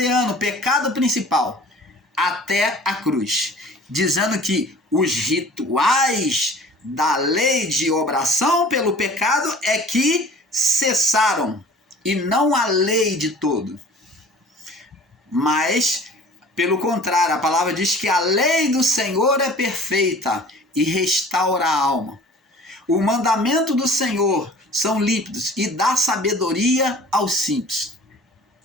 pecado principal, até a cruz, dizendo que os rituais da lei de obração pelo pecado é que cessaram, e não a lei de todo. Mas, pelo contrário, a palavra diz que a lei do Senhor é perfeita e restaura a alma. O mandamento do Senhor são límpidos e dá sabedoria aos simples.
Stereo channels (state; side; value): normal; both; correlation 0.46